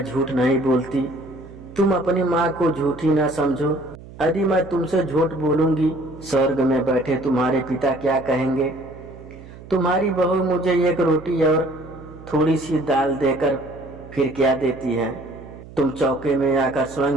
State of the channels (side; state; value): right; noise; hum, 17 dB below the sound